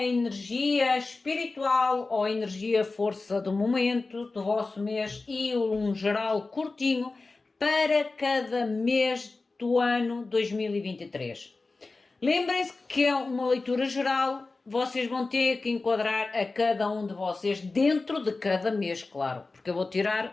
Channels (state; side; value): quieter; right; 3.6 dB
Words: energia espiritual ou a energia força do momento do vosso mês e um geral curtinho para cada mês do ano 2023. Lembrem-se que é uma leitura geral. Vocês vão ter que enquadrar a cada um de vocês dentro de cada mês, claro, porque eu vou